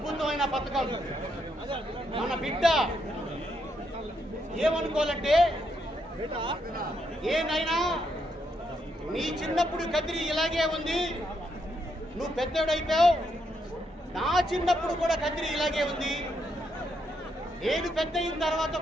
పథకం. మన బిడ్డ ఏమనుకోవాలంటే, ఏనైనా నీ చిన్నప్పుడు కదిరి ఇలాగే ఉంది, నువ్వు పెద్దోడైపోయావు, నా చిన్నప్పుడు కూడా కదిరి ఇలాగే ఉంది, నేను పెద్ద అయిన తర్వాత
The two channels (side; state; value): both; normal; correlation 0.78